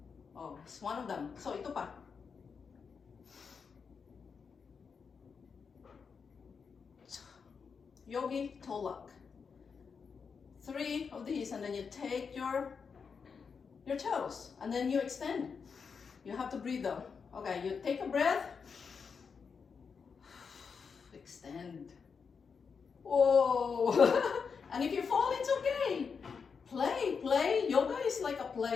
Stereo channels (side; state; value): right; quieter; 5.8 dB